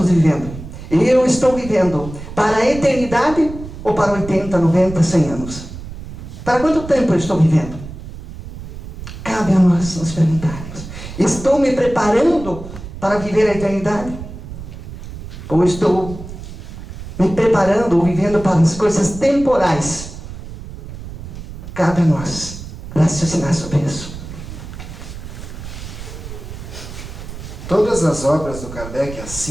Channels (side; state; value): right; noise; rumble, 11 dB below the sound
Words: vivendo? Eu estou vivendo para a eternidade ou para 80, 90, 100 anos? Para quanto tempo eu estou vivendo? Cabe a nós nos perguntarmos: estou me preparando para viver a eternidade? Ou estou me preparando ou vivendo para as coisas temporais? Cabe a nós raciocinar sobre isso. Todas as obras do Kardec, as